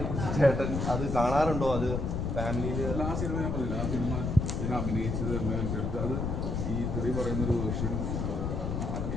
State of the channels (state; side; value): noise; left; rumble, 1 dB below the sound